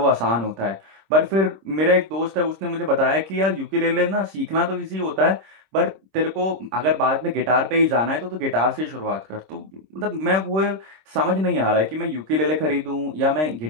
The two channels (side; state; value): left; late; 26 ms